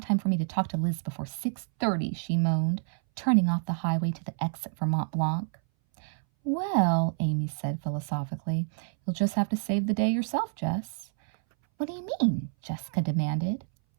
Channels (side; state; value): left; silent; 59 dB below the other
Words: for me to talk to Liz before 6:30, she moaned, turning off the highway to the exit for Mont Blanc. "Well," Amy said philosophically, "you'll just have to save the day yourself, Jess." "What do you mean?" Jessica demanded.